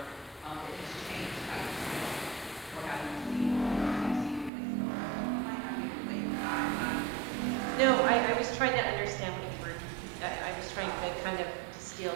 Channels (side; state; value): left; drops out; at 4.5 s